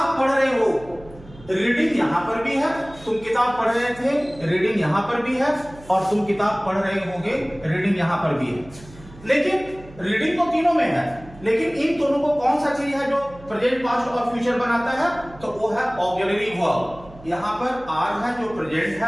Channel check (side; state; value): right; noise; hum, 20 dB below the sound